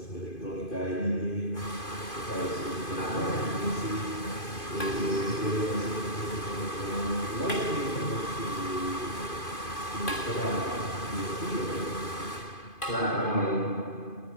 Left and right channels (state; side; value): late; right; 2.5 ms